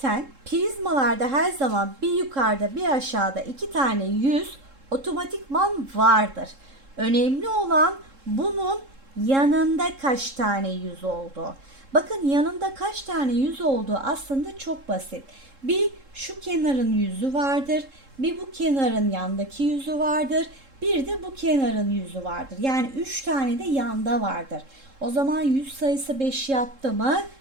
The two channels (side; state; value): left; late; 3.7 ms